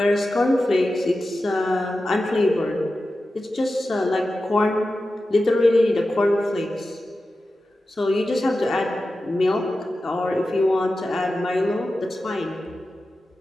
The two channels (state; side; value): normal; both; correlation 0.93